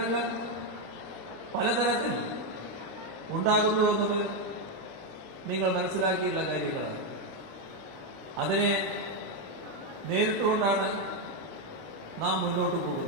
പലതരത്തിൽ ഉണ്ടാകുന്നു എന്നത് നിങ്ങൾ മനസ്സിലാക്കിയുള്ള കാര്യങ്ങളാണ്. അതിനെ നേരിട്ടുകൊണ്ടാണ് നാം മുന്നോട്ട്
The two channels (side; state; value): both; normal; correlation 0.05